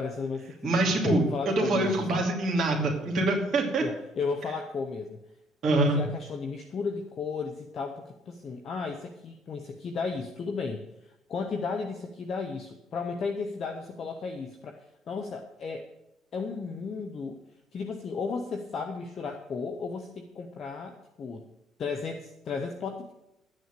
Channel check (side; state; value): both; normal; correlation 0.64